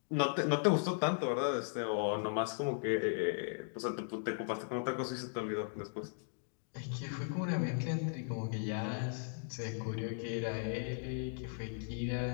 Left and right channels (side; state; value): right; silent; digital silence